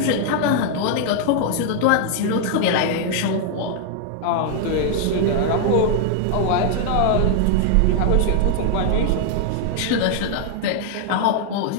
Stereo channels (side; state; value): both; different; correlation 0.00